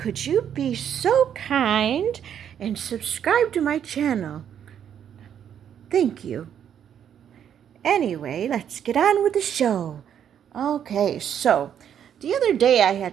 you be so kind and subscribe to my channel? Thank you. Anyway, let's get on with the show. Okay, so the other day I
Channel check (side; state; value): left; quieter; 9.1 dB